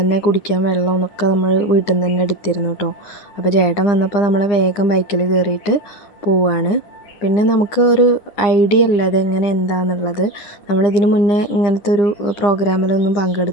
കുടിക്കാൻ വെള്ളവും ഒക്കെ നമ്മൾ വീട്ടിൽ നിന്ന് തന്നെ എടുത്തിരുന്നു കേട്ടോ. അപ്പോൾ ചേട്ടൻ വന്നപ്പോൾ നമ്മൾ വേഗം ബൈക്കിൽ കയറിയിട്ട് പോവുകയാണ്. പിന്നെ നമുക്ക് ഒരു ഐഡിയ അല്ല ഇതെങ്ങനെ എന്താണെന്നുള്ളത്. നമ്മളിതിന് മുന്നേ ഇങ്ങനത്തെ ഒരു പ്രോഗ്രാമിലൊന്നും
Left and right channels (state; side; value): late; right; 9.8 ms